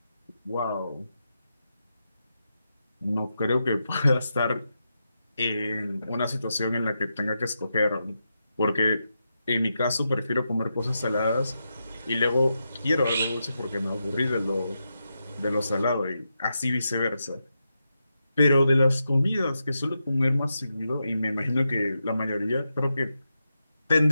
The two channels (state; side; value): inverted; both; correlation -0.87